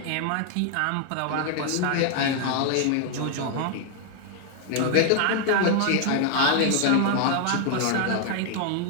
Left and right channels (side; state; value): both; different; correlation 0.00